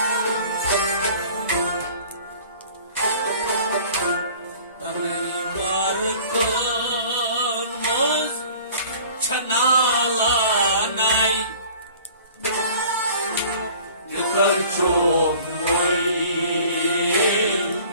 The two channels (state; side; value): inverted; both; correlation -0.48